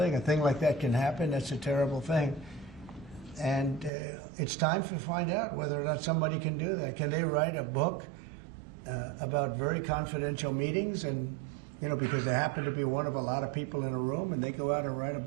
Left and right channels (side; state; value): left; drops out; at 3.9 s